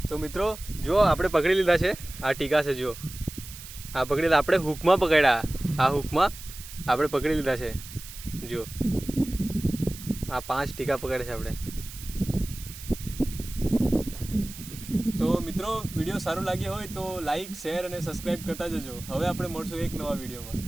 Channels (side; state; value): right; noise; hiss, 14 dB below the sound